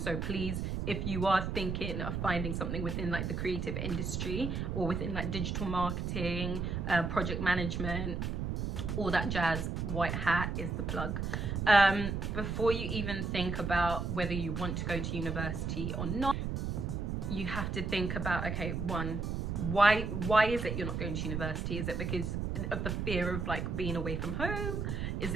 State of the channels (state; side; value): noise; right; rumble, 2 dB below the sound